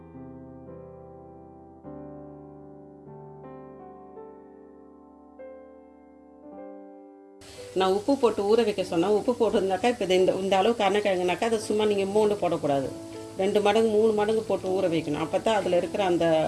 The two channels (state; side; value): identical; both; correlation 1.00